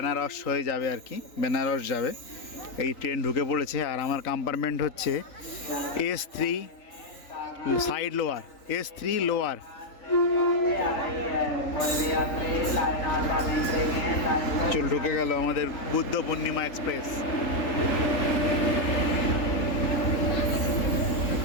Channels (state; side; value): late; right; 3.8 ms